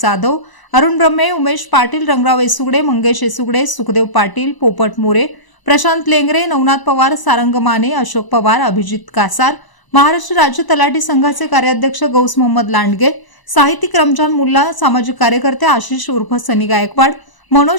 अरुण ब्रह्मे, उमेश पाटील, रंगराव येसुगडे, मंगेश येसुगडे, सुखदेव पाटील, पोपट मोरे, प्रशांत लेंगरे, नवनाथ पवार, सारंग माने, अशोक पवार, अभिजित कासार, महाराष्ट्र राज्य तलाठी संघाचे कार्याध्यक्ष गौस मोहम्मद लांडगे, साहित्यिक रमजान मुल्ला, सामाजिक कार्यकर्ते आशिष उर्फ सनी गायकवाड,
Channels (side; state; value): right; late; 1.0 ms